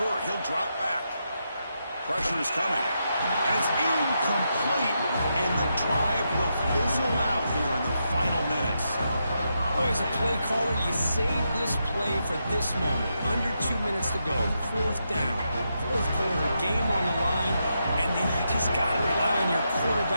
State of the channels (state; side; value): inverted; both; correlation -0.83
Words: He'll drop back. Pressure is coming. And it's incomplete. And the drive will fizzle out here in the final minutes. Oh, as a play caller, you save this play for this moment. Under 2 minutes to go. Fourth down. Fourth quarter. Game on the line. And then you just got to rely on your